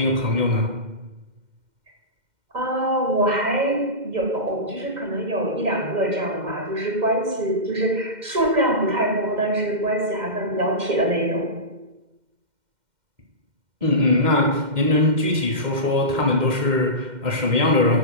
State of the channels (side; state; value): left; late; 2.1 ms